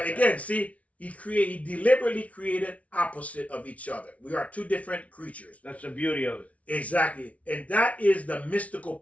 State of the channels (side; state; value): right; late; 0.066 ms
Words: again, see, he deliberately created opposite of each other. We are two different creatures. That's the beauty of it. Exactly. And that is the mystical